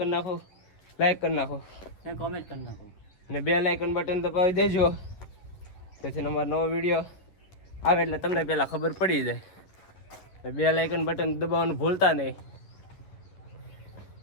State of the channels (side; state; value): right; late; 11 ms